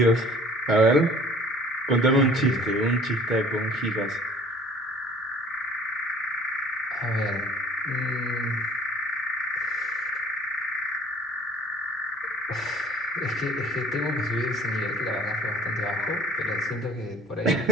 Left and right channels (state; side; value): normal; both; correlation 0.50